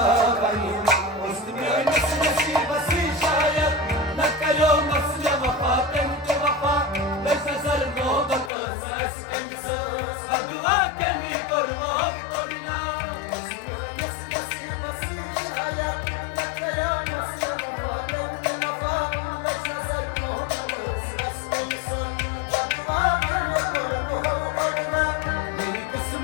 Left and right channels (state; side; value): drops out; right; at 8.5 s